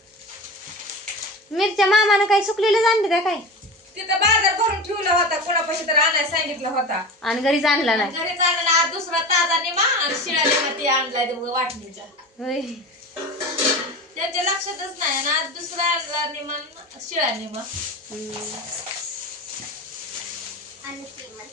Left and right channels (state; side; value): normal; both; correlation 0.30